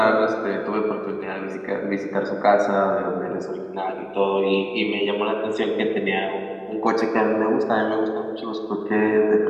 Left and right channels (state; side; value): identical; both; correlation 1.00